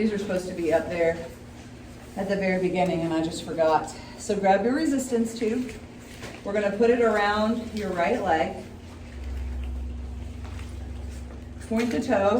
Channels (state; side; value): identical; both; correlation 1.00